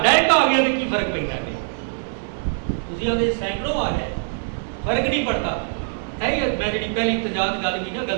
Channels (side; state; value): left; silent; digital silence